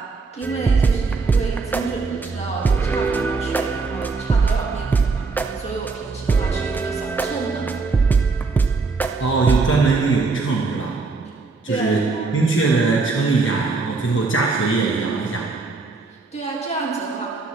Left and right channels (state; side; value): quieter; left; 4.1 dB